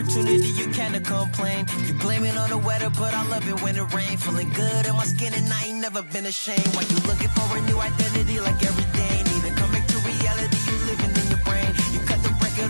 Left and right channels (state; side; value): inverted; both; correlation -1.00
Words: you can to complain. You blame it on the weather, but I love it when it rains. Feeling good in my skin and I ain't never been ashamed. Why you looking for a new identity like every day? Need to come back to reality, you living in your brain. You cut the record